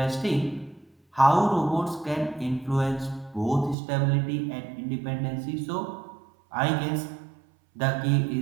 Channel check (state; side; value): drops out; left; at 3.8 s